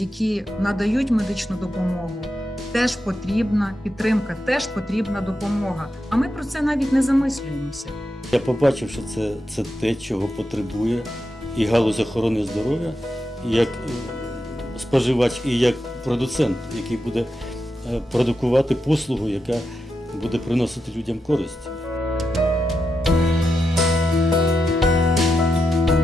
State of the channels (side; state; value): both; normal; correlation 0.87